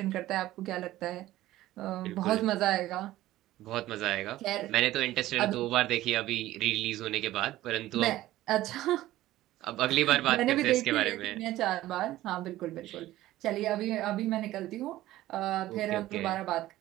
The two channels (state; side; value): quieter; left; 15.4 dB